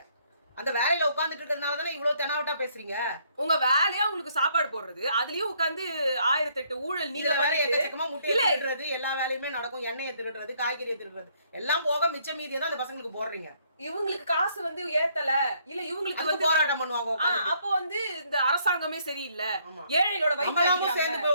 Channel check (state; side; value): inverted; both; correlation -0.68